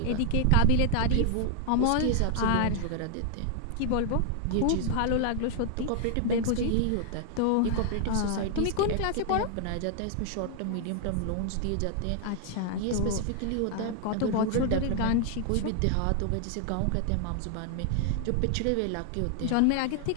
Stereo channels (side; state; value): both; different; correlation 0.00